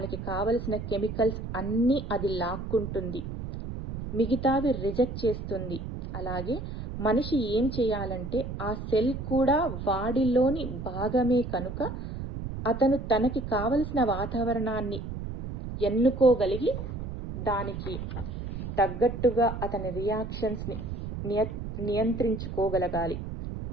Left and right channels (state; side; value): noise; right; rumble, 7 dB below the sound